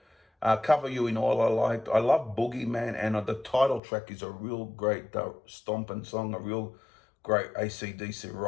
Cover You in All I liked. I love Boogeyman, and the title track is a real great stomping song, a real great AC/DC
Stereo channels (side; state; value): right; drops out; at 3.8 s